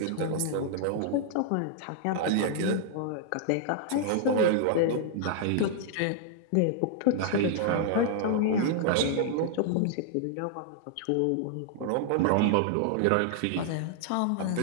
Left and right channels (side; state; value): both; different; correlation -0.01